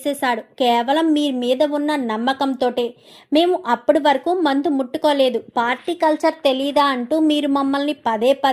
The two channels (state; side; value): identical; both; correlation 1.00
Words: కేవలం మీ మీద ఉన్న నమ్మకంతోటే. మేము అప్పటి వరకు మందు ముట్టుకోలేదు, పార్టీ కల్చర్ తెలీదా అంటూ మీరు మమ్మల్ని పదే